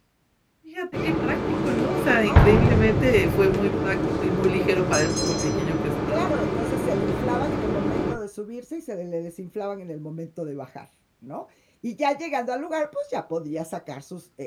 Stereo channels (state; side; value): identical; both; correlation 1.00